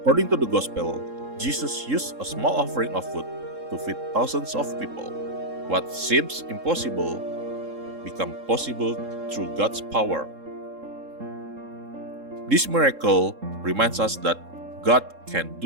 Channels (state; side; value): late; left; 3.7 ms